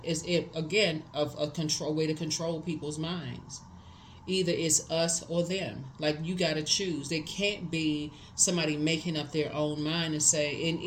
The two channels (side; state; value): both; identical; correlation 1.00